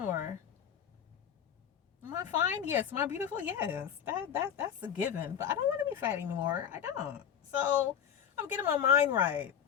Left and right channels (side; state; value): right; quieter; 8.7 dB